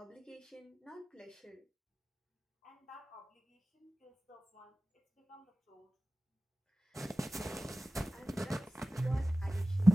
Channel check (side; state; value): both; normal; correlation 0.95